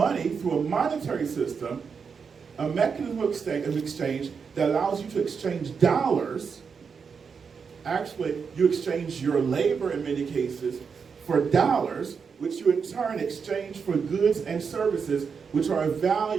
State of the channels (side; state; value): left; quieter; 5.9 dB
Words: through a monetary system, a mechanism of exchange that allows you to exchange dollars. Actually, you exchange your labor in many cases for dollars, which you in turn exchange for goods and services which are of